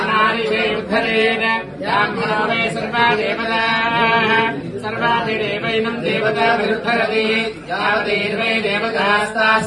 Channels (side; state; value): both; identical; correlation 1.00